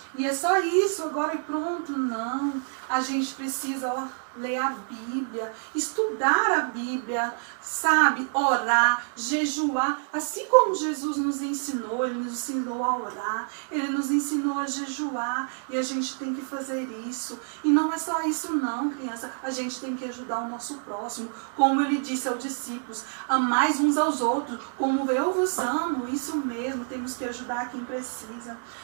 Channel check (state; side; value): silent; left; 60 dB below the other